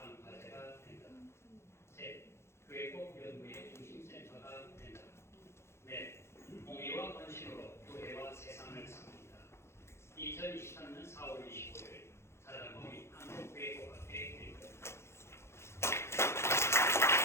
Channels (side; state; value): right; late; 0.13 ms